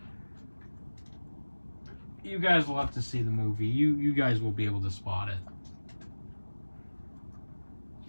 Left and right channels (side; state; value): both; inverted; correlation -1.00